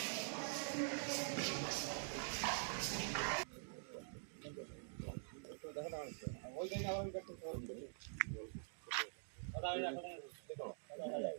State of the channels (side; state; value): left; silent; digital silence